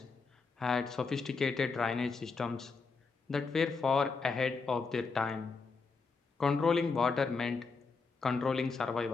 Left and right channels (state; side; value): quieter; right; 4.5 dB